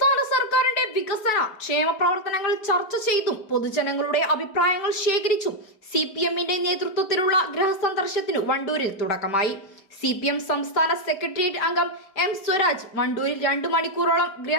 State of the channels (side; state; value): right; late; 5.1 ms